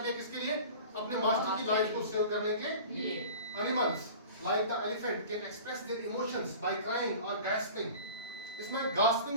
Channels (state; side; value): inverted; both; correlation -0.40